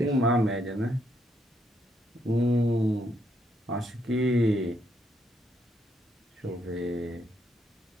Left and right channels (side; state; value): both; normal; correlation 0.74